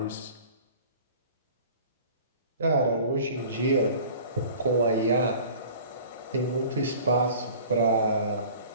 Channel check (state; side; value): inverted; both; correlation -0.45